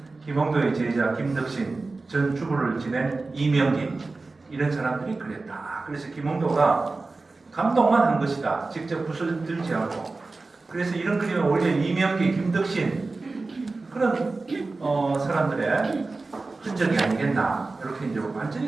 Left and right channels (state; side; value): quieter; left; 3.6 dB